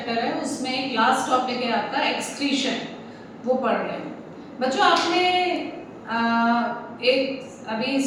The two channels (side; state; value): both; identical; correlation 1.00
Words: है उसमें एक लास्ट टॉपिक है आपका एक्सक्रीशन, वो पढ़ रहे हैं। बच्चों आपने एक अभी